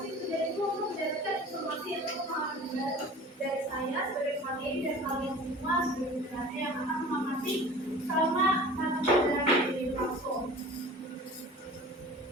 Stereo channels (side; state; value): both; normal; correlation 0.42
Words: kerja itu untuk mendapatkan informasi atau pemahaman dari saya sebagai materi dan kalian semua sebagai pendengar yang akan mengamati selama mata pelajaran di platform.